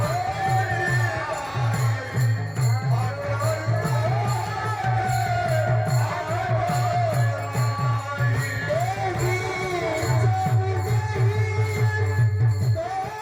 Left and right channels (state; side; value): identical; both; correlation 1.00